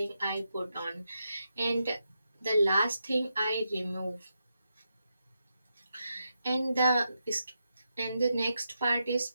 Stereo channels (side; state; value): both; inverted; correlation -0.85